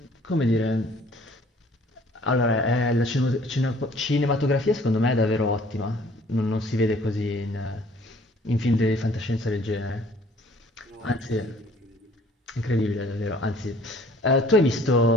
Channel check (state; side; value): normal; both; correlation 0.55